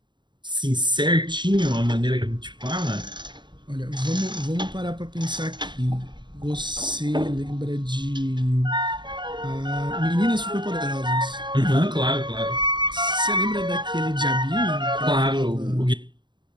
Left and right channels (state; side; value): late; left; 0.22 ms